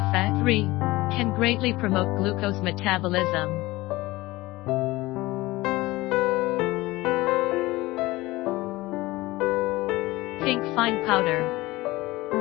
3. Can greatly promote glucose metabolism. Pink fine powder.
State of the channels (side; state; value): right; quieter; 19.7 dB